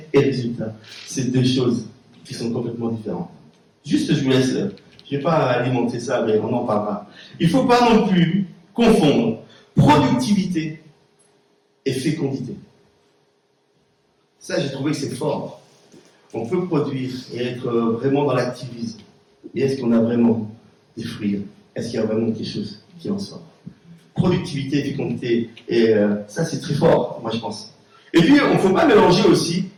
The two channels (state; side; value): identical; both; correlation 1.00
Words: et résultat, c'est deux choses qui sont complètement différentes. Juste, je vous laisse, je ne vais pas alimenter ça, mais on en parlera. Il ne faut pas non plus confondre productivité et fécondité. Ça, j'ai trouvé que c'est fort. On peut produire et être vraiment dans l'activisme. Mais est-ce qu'on a vraiment des fruits? Est-ce qu'il y a vraiment quelque chose qui en sort? Productivité et fécondité, et ça, c'est très fort, moi, je pense. Et puis, on ne faut pas mélanger aussi